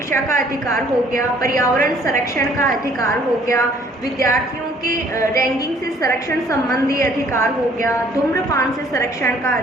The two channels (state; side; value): normal; both; correlation 0.59